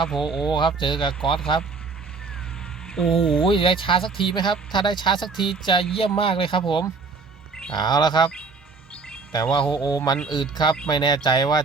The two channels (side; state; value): left; quieter; 4.5 dB